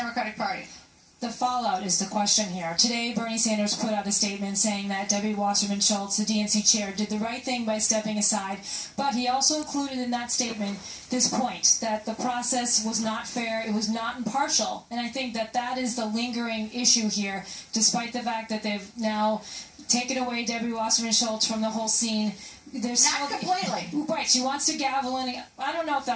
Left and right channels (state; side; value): identical; both; correlation 1.00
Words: Party? The fallout is the question here. Today, Bernie Sanders put out a statement saying that Debbie Wasserman Shultz, the DNC chair, did the right thing by stepping aside, but he also included in that statement this point, that the process was not fair, it was not impartial, and I think that that is the lingering issue here, despite the fact that they've now taken away Debbie Wasserman Shultz from the whole scene. There's not completely. Right, she wants to gavel in. I don't know if